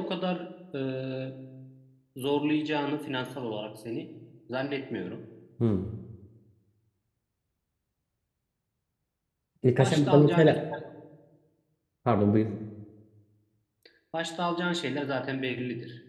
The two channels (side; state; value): both; identical; correlation 1.00